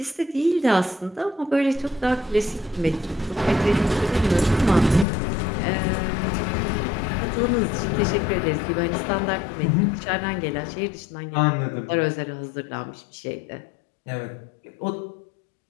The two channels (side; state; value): right; drops out; at 5.1 s